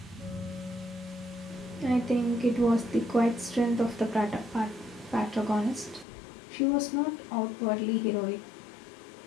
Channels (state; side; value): drops out; right; at 6.1 s